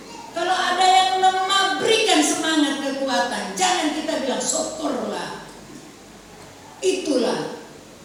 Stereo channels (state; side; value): identical; both; correlation 1.00